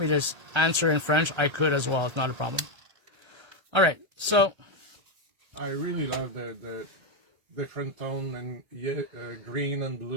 to answer in French, I could as well. It's not a problem. All right. So I really love the different tone and green and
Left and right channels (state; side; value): late; left; 1.3 ms